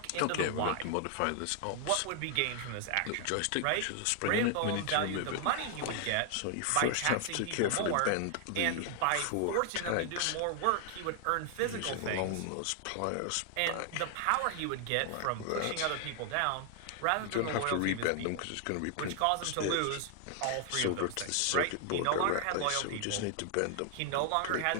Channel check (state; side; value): different; both; correlation 0.00